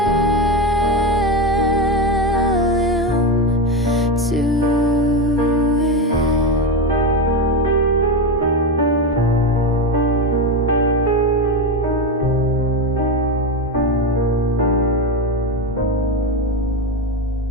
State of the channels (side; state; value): both; normal; correlation 0.15